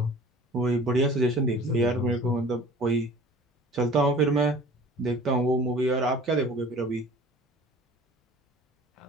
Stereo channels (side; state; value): both; normal; correlation 0.46